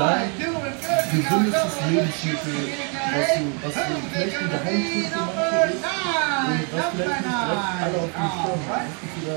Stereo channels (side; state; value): left; quieter; 37.4 dB